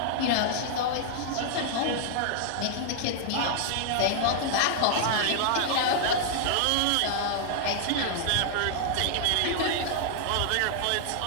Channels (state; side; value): different; both; correlation -0.01